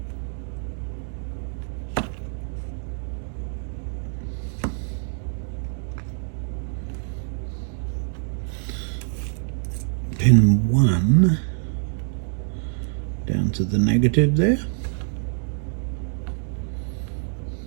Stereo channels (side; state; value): left; silent; 62 dB below the other